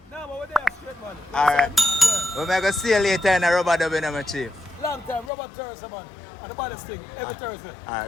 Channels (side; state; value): right; drops out; at 5.3 s